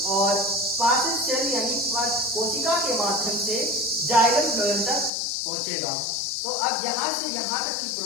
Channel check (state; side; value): drops out; right; at 5.1 s